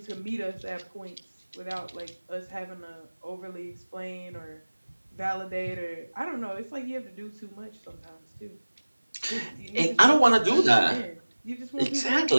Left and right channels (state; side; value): inverted; both; correlation -1.00